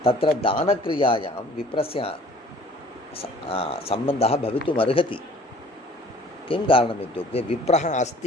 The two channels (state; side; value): normal; both; correlation 0.51